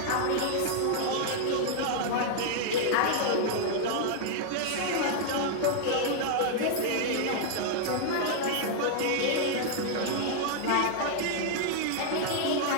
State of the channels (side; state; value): both; different; correlation -0.01